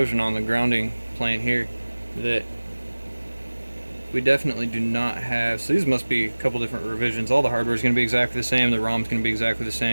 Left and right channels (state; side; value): inverted; both; correlation -1.00